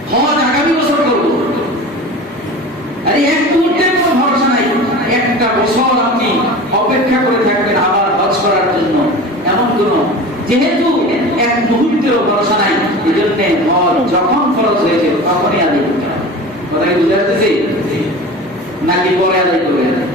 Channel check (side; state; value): both; normal; correlation 0.35